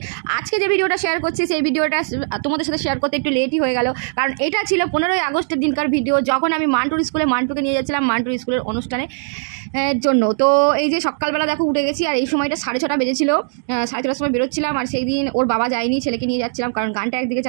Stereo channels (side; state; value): left; silent; digital silence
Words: আজকে যে ভিডিওটা শেয়ার করছি সেই ভিডিওটা তোমাদের সাথে শেয়ার করতে একটু লেটই হয়ে গেল, কারণ এটা ছিল 15ই আগস্টের দিনকার ভিডিও, যখন আমি মান্টুকে নিয়ে যাচ্ছিলাম মান্টুর স্কুলের অনুষ্ঠানে জন্য। তো এই যে সকালবেলা দেখো উঠে গেছি, আর এই সময়টা 6:30 বেজেছিল, 6:30টার সময় বেরোচ্ছিলাম। আর সেই দিন ওর বাবা যায়নি, ছেলেকে নিয়ে যাচ্ছিলাম, কারণ গানটা একদিকে